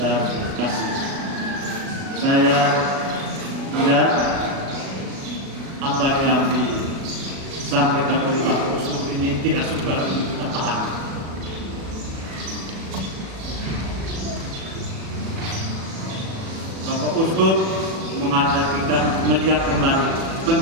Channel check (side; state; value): left; late; 37 ms